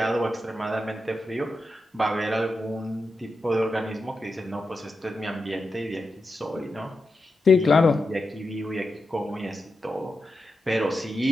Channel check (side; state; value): both; normal; correlation 0.89